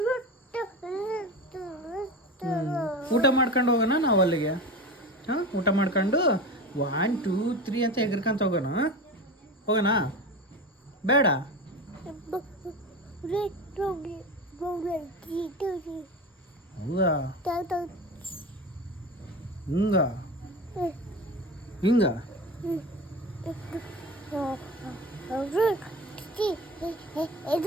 ಊಟ ಮಾಡ್ಕೊಂಡು ಹೋಗೋಣ ನಾವು ಅಲ್ಲಿಗೆ ಹಾಂ ಊಟ ಮಾಡ್ಕೊಂಡು 1 2 3 ಅಂತ ಎಗರ್ಕೊಂತ ಹೋಗೋಣ ಹೋಗೋಣ ಬೇಡ ಹೌದಾ ಹಿಂಗ ಹಿಂಗ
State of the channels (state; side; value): normal; both; correlation 0.28